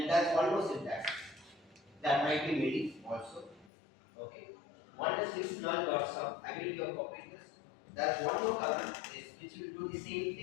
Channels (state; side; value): drops out; right; at 3.7 s